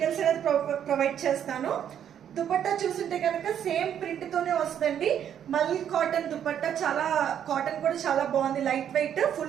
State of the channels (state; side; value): quieter; left; 9.4 dB